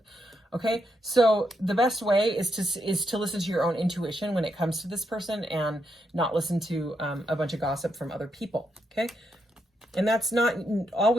Okay. So the best way is to listen to your own intuition when it comes to this person and not listen to a bunch of gossip from other people. Okay. And that's not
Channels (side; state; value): both; normal; correlation 0.81